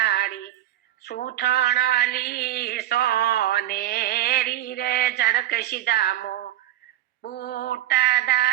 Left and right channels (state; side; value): quieter; left; 13.4 dB